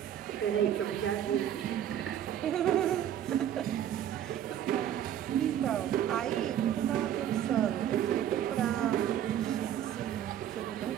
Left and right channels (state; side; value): quieter; left; 10.6 dB